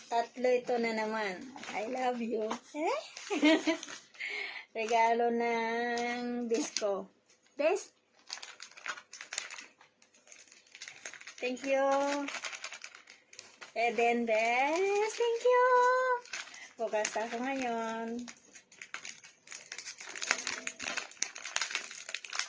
Tatlo ito na naman. I love you. Regalo ng disco. Des? Thank you. Eden Des. Thank you. Bukas ako ngayon.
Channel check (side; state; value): both; identical; correlation 1.00